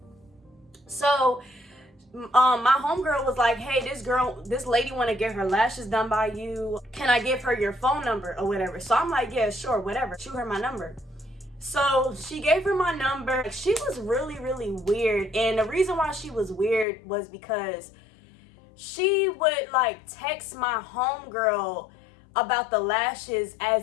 So my homegirl was like, hey, this lady want to get her lashes done by you. Can I give her your phone number or whatever? So I'm like, yeah, sure, whatever. Shoot her my number. So she gave her my number. She was really weird. And the reason why she was weird was because she would like text my homegirl about the lashes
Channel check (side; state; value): right; drops out; at 16.9 s